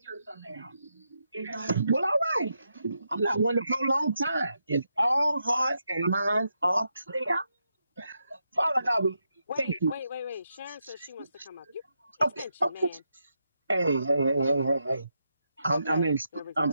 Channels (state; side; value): inverted; both; correlation -0.84